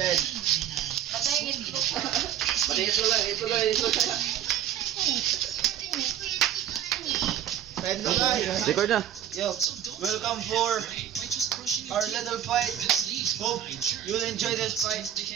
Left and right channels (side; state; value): left; quieter; 10.3 dB